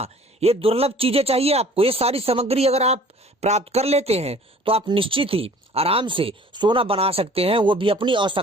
ये दुर्लभ चीजें चाहिए आपको। ये सारी सामग्री अगर आप प्राप्त कर लेते हैं तो आप निश्चित ही आराम से सोना बना सकते हैं, वो भी अपनी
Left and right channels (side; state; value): both; normal; correlation 0.50